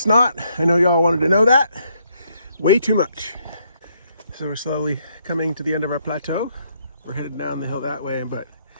I know y'all wanted to know that. Way too much. So we're slowly coming to the end of our plateau. We're headed down the hill that way, but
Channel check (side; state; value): both; inverted; correlation -0.72